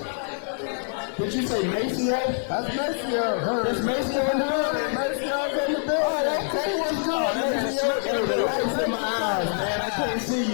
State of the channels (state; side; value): silent; right; 58 dB below the other